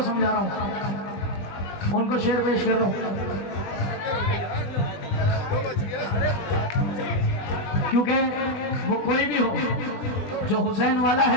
समझा रहा हूँ, उनको शेर पेश कर रहा हूँ, क्योंकि वो कोई भी हो जो हुसैन वाला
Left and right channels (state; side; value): late; right; 20 ms